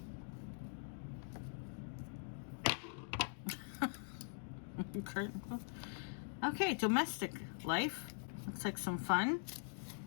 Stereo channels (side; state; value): right; silent; digital silence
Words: Okay, domestic life. Looks like some fun.